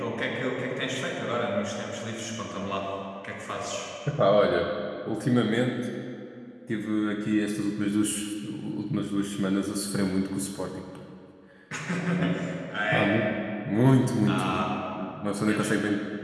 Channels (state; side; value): identical; both; correlation 1.00